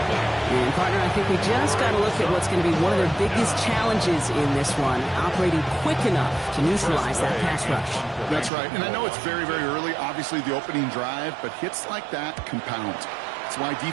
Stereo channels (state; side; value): drops out; left; at 8.5 s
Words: And, partner, I think we just got to look at what's going to be one of their biggest challenges in this one, operating quick enough to neutralize that pass rush. That's right. And I know it's very, very early, obviously the opening drive, but hits like that compound. That's why